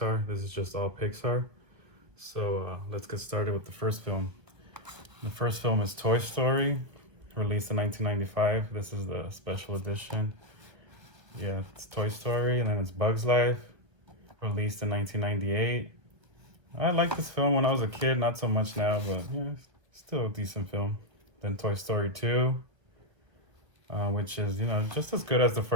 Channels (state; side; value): late; left; 1.5 ms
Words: This is just all Pixar. So let's get started with the first film. The first film is Toy Story, released in 1995. This is the special edition. Yeah, it's Toy Story, and then it's Bugs Life, released in 1998. I liked this film when I was a kid, not so much now, but yeah, still a decent film. Then Toy Story 2, which is, just as good as the